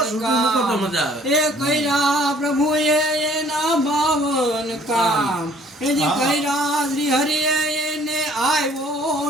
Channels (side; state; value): both; normal; correlation 0.58